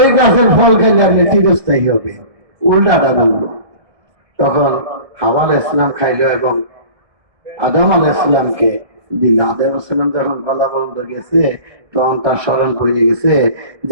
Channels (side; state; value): left; late; 1.6 ms